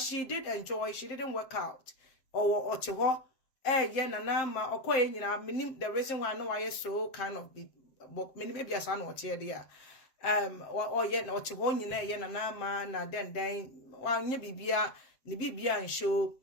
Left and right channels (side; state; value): right; late; 7.6 ms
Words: she did enjoy, she didn't work out. Or to what? Nana Ana the reason why I know I so kind of be maybe as I know what there. Or yet not to one Nana Ana na then while nye bibia ni bibia and show